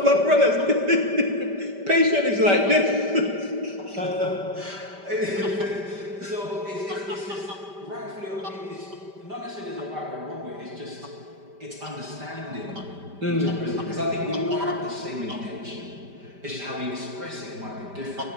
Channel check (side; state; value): left; late; 5.1 ms